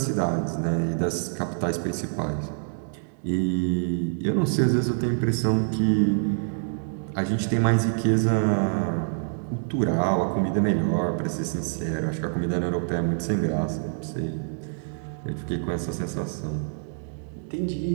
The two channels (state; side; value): silent; left; digital silence